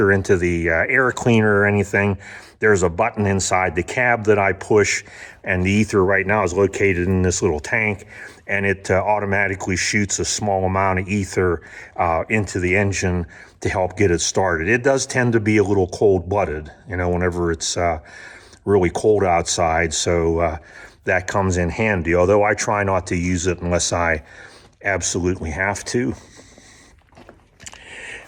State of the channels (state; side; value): identical; both; correlation 1.00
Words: into the air cleaner or anything, there's a button inside the cab that I push, and the ether right now is located in this little tank, and it automatically shoots a small amount of ether into the engine to help get it started. It does tend to be a little cold-blooded, whenever it's really cold outside, so that comes in handy, although I try not to use it unless I absolutely have to.